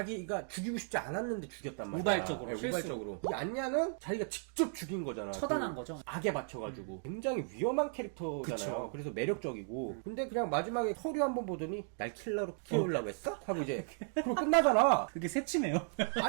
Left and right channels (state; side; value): silent; left; 54 dB below the other